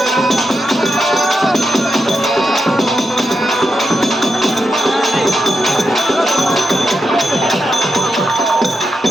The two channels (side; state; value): both; normal; correlation 0.86